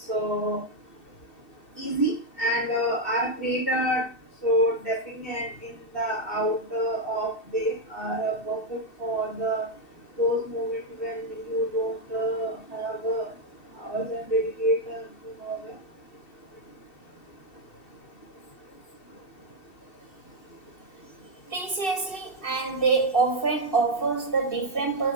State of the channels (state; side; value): late; right; 2.7 ms